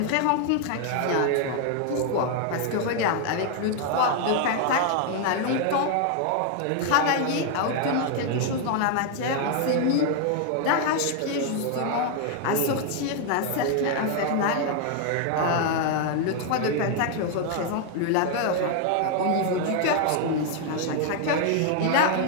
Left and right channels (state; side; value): different; both; correlation 0.00